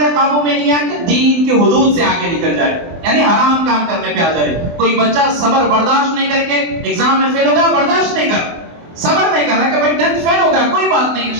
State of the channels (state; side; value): late; left; 24 ms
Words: قابو میں نہیں آ کے دین کی حدود سے آگے نکل جائے، یعنی حرام کام کرنے پہ آ جائے. کوئی بچہ صبر برداشت نہیں کر کے ایگزام میں فیل ہو گیا، برداشت نہیں کر، صبر نہیں کر رہا کہ بھائی 10th فیل ہو گیا، کوئی بات نہیں